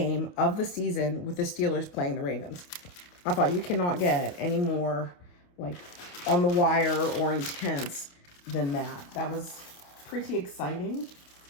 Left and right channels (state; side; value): late; right; 28 ms